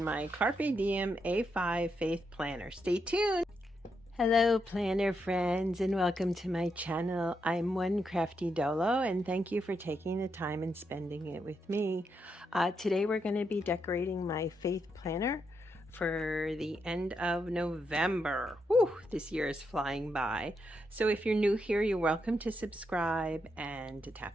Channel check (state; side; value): normal; both; correlation 0.82